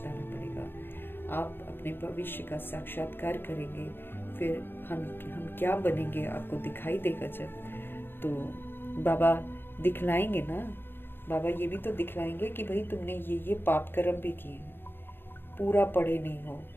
पड़ेगा। आप अपने भविष्य का साक्षात्कार करेंगे, फिर हम क्या बनेंगे आपको दिखाई देगा जब, तो बाबा दिखलाएंगे ना। बाबा ये भी तो दिखलाएंगे कि भाई तुमने ये पाप कर्म भी किए हैं, पूरा पढ़े नहीं हो,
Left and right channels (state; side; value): late; right; 0.10 ms